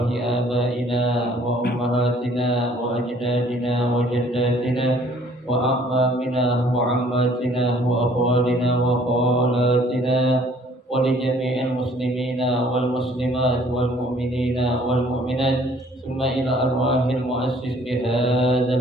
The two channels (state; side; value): normal; both; correlation 0.57